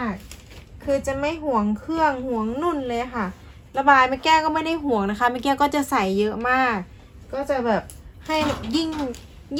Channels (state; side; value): identical; both; correlation 1.00